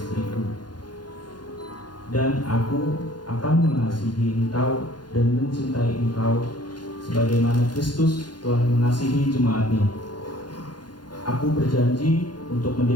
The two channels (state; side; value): late; right; 0.70 ms